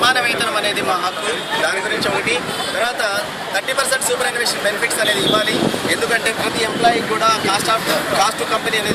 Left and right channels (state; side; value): identical; both; correlation 1.00